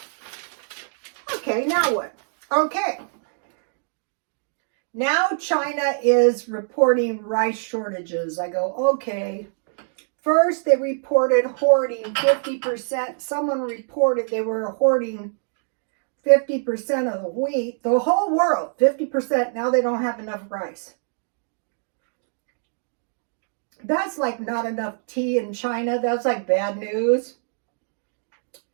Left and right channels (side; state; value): left; silent; digital silence